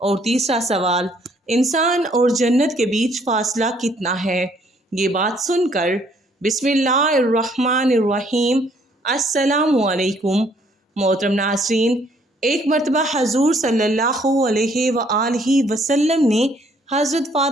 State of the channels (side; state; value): both; normal; correlation 0.64